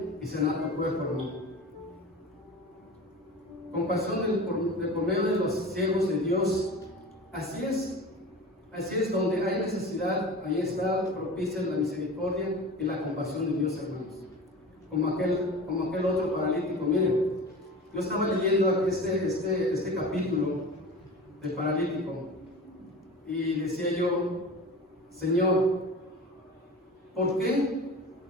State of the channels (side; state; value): both; normal; correlation 0.35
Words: y sanar tu cuerpo, hermano. Compasión por medio de los siervos de Dios Así es, donde hay necesidad, ahí está propicia la misericordia y la compasión de Dios, hermanos. Como aquel otro paralítico. Miren, yo estaba leyendo este capítulo del paralítico y decía yo, Señor, ¿por qué?